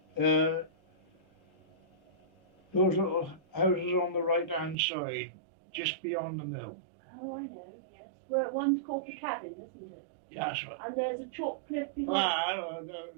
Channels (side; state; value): left; drops out; at 4.8 s